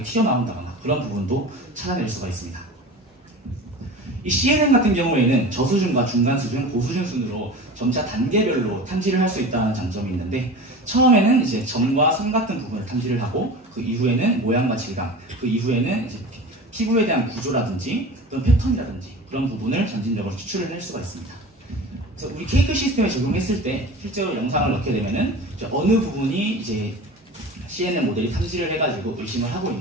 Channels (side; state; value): both; normal; correlation 0.34